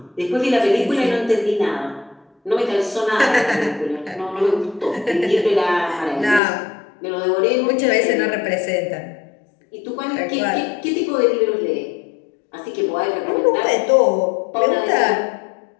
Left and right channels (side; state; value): right; drops out; at 6.4 s